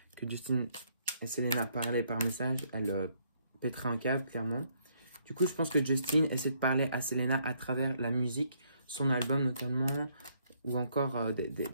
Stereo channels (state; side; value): inverted; both; correlation -0.70